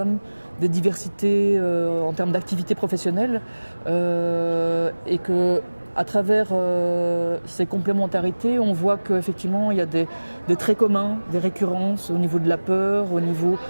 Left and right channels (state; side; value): inverted; both; correlation -1.00